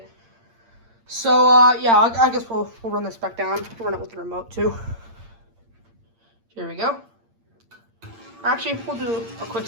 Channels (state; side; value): late; left; 8.7 ms